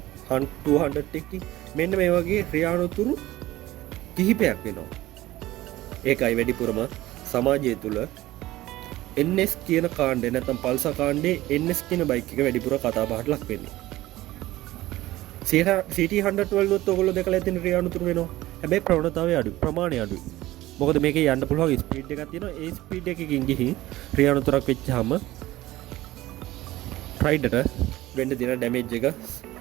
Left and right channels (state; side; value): quieter; left; 16.6 dB